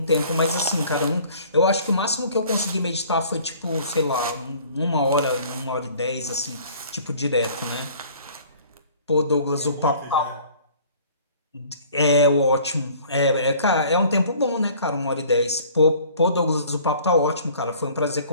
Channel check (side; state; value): both; inverted; correlation -0.52